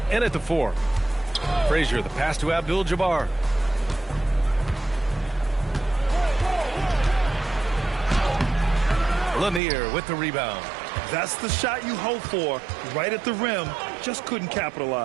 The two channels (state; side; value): drops out; left; at 9.6 s